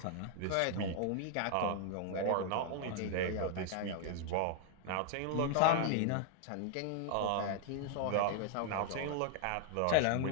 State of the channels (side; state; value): both; different; correlation 0.00